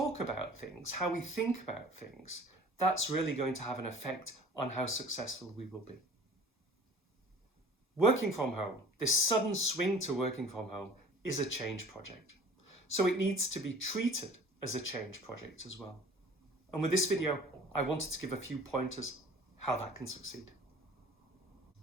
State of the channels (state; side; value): normal; both; correlation 0.46